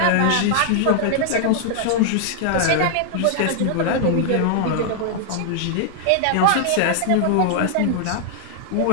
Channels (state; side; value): different; both; correlation -0.01